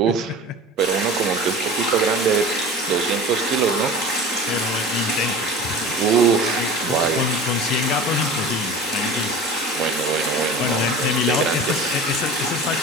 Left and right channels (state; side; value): normal; both; correlation 0.37